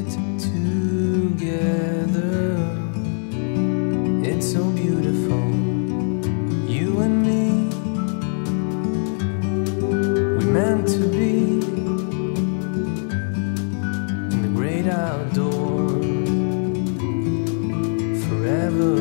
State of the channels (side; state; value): right; silent; 64 dB below the other